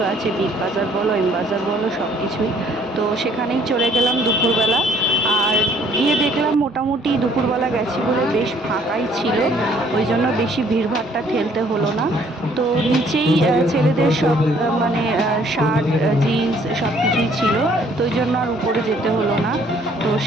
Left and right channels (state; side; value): normal; both; correlation 0.61